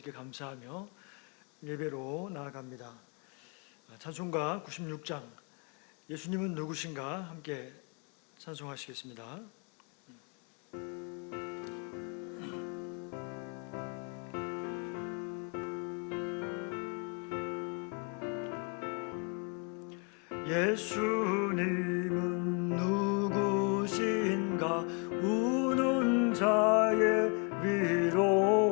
감사하며 예배로 나아갑니다. 찬송가 96장 예수님은 누구신가 함께 찬송하시겠습니다. 예수님은 누구신가 우는 자의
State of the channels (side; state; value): right; quieter; 35.2 dB